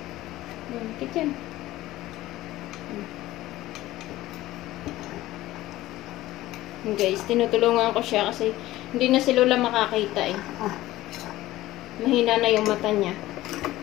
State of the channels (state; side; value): quieter; right; 16.3 dB